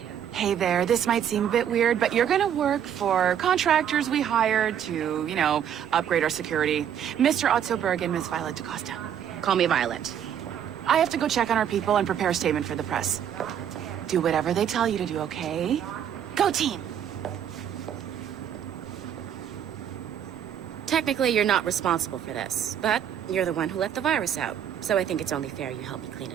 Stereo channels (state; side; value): quieter; left; 9.2 dB